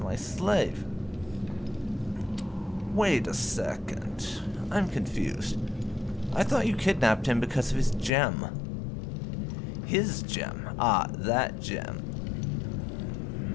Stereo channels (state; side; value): drops out; right; at 8.1 s